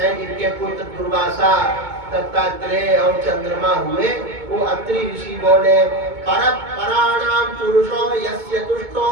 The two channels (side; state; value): left; late; 2.2 ms